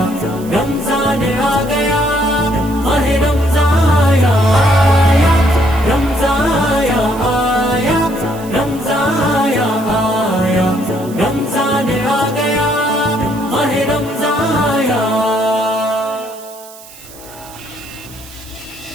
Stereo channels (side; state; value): right; noise; hiss, 19 dB below the sound